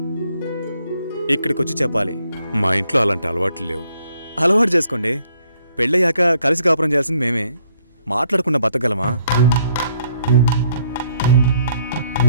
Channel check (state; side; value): inverted; both; correlation -0.68